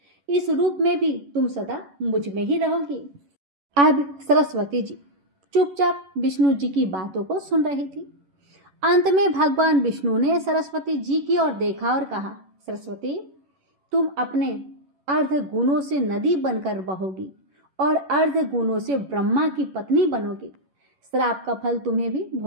इस रूप में भी तुम सदा मुझ में ही रहोगी। अब सरस्वती जी चुपचाप विष्णु जी की बातों को सुन रही थी। अंत में भगवान विष्णु ने सरस्वती जी की ओर देखा और कहा, सरस्वती, तुम अपने अर्ध गुणों से नदी बनकर बहोगी और अर्ध गुणों से ब्रह्मा की पत्नी बनोगी। श्राप का फल तुम्हें भी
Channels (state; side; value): late; left; 11 ms